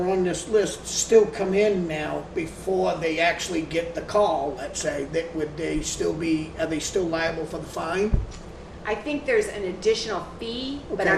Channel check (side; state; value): both; identical; correlation 1.00